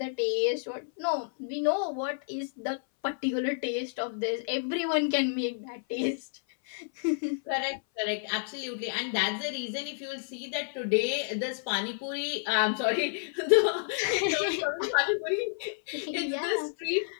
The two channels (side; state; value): right; silent; 58 dB below the other